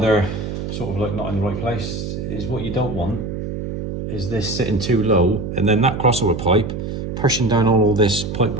sort of like not in the right place is, what you don't want is this sitting too low and then that crossover pipe pushing down all this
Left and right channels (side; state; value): right; noise; hum, 5 dB below the sound